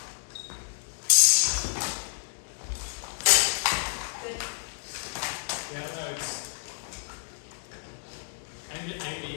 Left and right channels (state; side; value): silent; right; digital silence